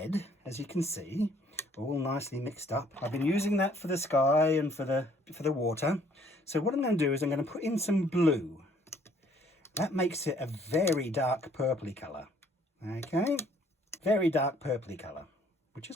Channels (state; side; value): normal; both; correlation 0.62